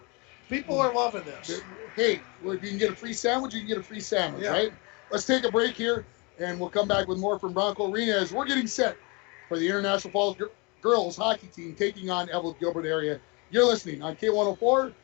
People are loving this. Hey, if you can get a free sandwich, you can get a free sandwich, right? Let's take a break here, and we'll come back with more from Bronco Arena as we're getting set for the International Falls girls hockey team taking on Eveleth Gilbert area. You're listening on K104,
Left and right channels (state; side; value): quieter; right; 29.7 dB